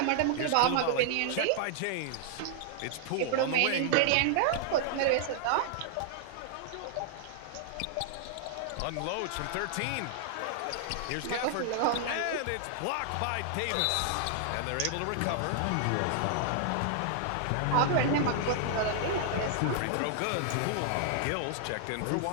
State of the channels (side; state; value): both; different; correlation 0.00